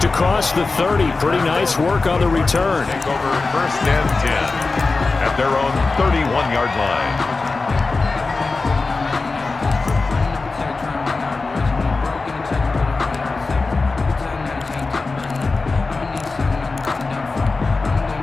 across the 30. Pretty nice work on the return. Take over 1st and 10 at their own 31-yard line.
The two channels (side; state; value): right; quieter; 3.8 dB